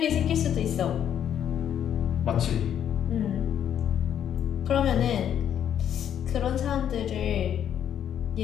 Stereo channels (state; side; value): quieter; right; 9.6 dB